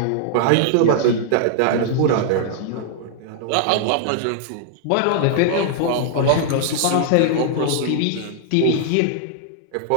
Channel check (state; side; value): different; both; correlation -0.01